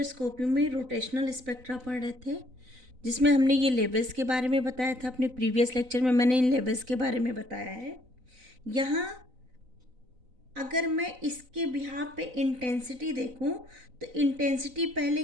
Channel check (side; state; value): left; late; 4.0 ms